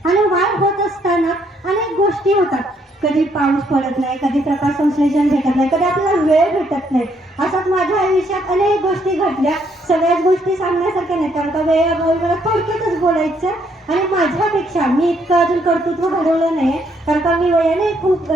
आणि वाढ होत असताना अनेक गोष्टी होतात. कधी पाऊस पडत नाही, कधी प्रकाश संश्लेषण भेटत नाही, कधी आपल्याला वेळ भेटत नाही. अशात माझ्या आयुष्यात अनेक गोष्टी घडल्या. सगळ्याच गोष्टी सांगण्यासारख्या नाही, कारण का वेळेअभावी मला थोडक्यातच बोलायचं आणि माझ्यापेक्षा मी इतकं अजून कर्तृत्व घडवलं नाही, कारण का मी वयाने खूप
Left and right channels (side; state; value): both; normal; correlation 0.71